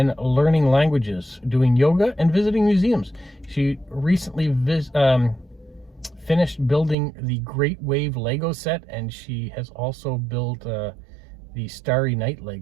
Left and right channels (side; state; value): left; drops out; at 7.0 s